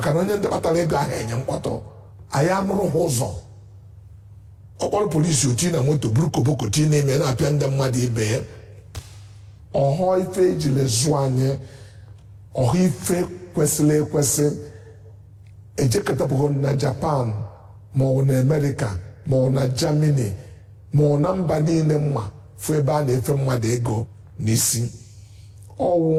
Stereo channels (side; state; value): both; identical; correlation 1.00